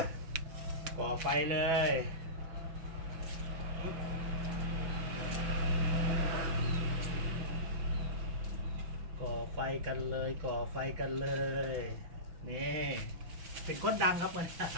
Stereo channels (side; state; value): left; late; 6.0 ms